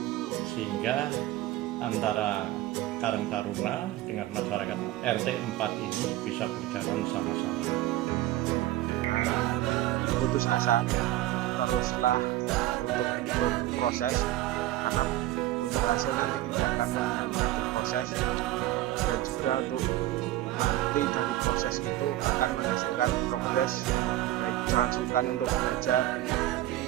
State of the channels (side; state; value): left; quieter; 15.3 dB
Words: sehingga antara Karang Taruna dengan masyarakat RT 4 ini bisa berjalan sama-sama. Putus asa, teruslah untuk berproses, karena untuk hasil nanti tidak akan menikmati proses, dan juga untuk nanti dari proses itu akan menghasilkan progres yang lebih baik. Jangan sungkan untuk belajar.